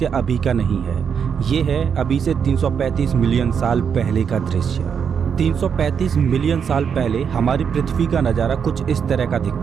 अभी का नहीं है। ये है अभी से 335 मिलियन साल पहले का दृश्य। 335 मिलियन साल पहले हमारी पृथ्वी का नज़ारा कुछ इस तरह का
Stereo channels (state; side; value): quieter; left; 7.1 dB